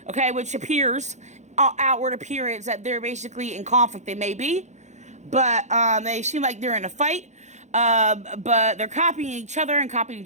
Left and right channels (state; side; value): late; left; 0.34 ms